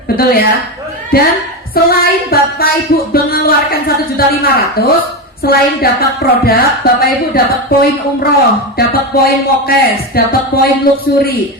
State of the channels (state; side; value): normal; both; correlation 0.15